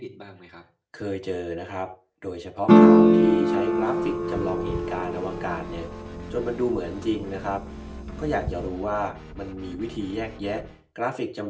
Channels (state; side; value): identical; both; correlation 1.00